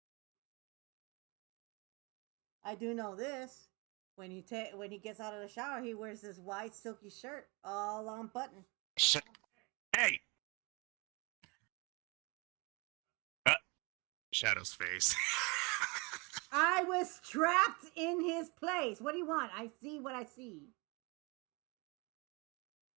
I do know this. When he gets out of the shower, he wears this white silky shirt, all on button. Hey! Shadow's face. I was trapped in his place. What do you want? I see what I see.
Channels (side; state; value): left; quieter; 28.5 dB